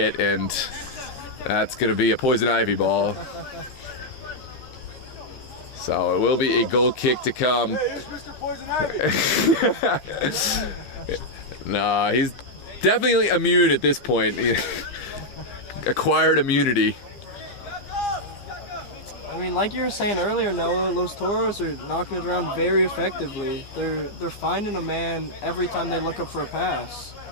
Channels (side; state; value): right; late; 15 ms